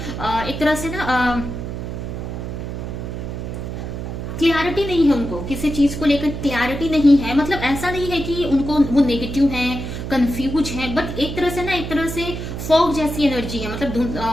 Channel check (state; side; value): noise; right; hum, 6 dB below the sound